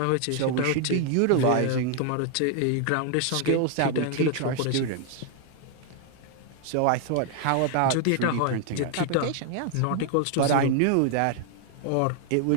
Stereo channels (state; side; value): different; both; correlation 0.00